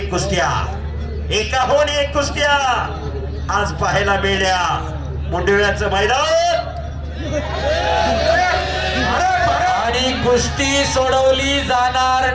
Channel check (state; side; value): identical; both; correlation 1.00